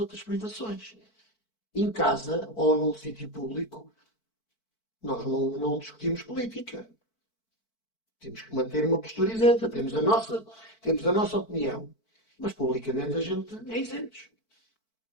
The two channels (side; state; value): right; late; 4.5 ms